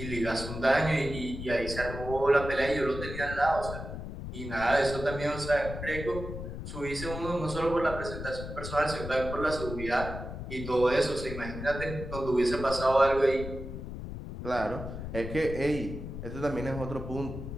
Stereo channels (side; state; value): left; noise; rumble, 8 dB below the sound